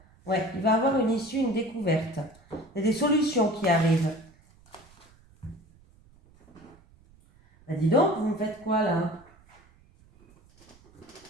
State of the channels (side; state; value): right; noise; rumble, 28 dB below the sound